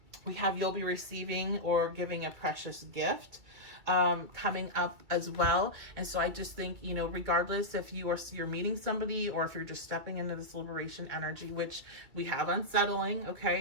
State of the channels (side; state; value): left; late; 2.3 ms